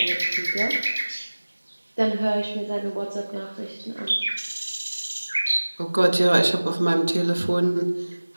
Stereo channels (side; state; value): both; inverted; correlation -1.00